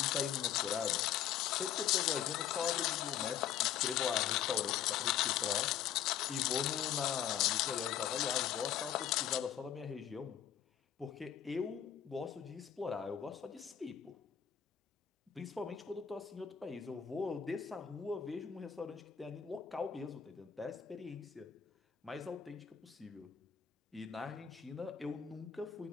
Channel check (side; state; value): right; quieter; 9.4 dB